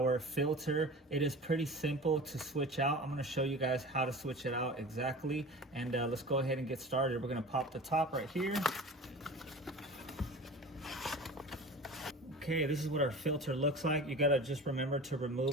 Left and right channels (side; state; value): both; normal; correlation 0.36